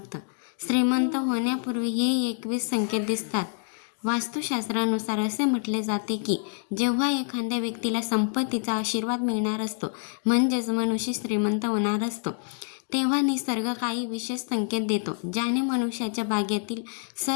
श्रीमंत होण्यापूर्वी हे 21 संकेत दिसतात. वास्तुशास्त्रानुसार असे म्हटले जाते की जेव्हा एखाद्या व्यक्तीला संपत्तीचा आशीर्वाद मिळणार असतो, म्हणजेच मनुष्य श्रीमंत होणार असतो, तेव्हा निसर्ग काही विशेष संकेत देतो, ज्याने मनुष्याच्या भाग्यातील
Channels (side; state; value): right; silent; 59 dB below the other